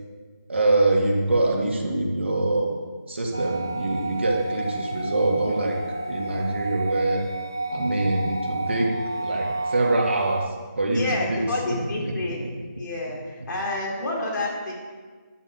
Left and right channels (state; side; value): inverted; both; correlation -0.82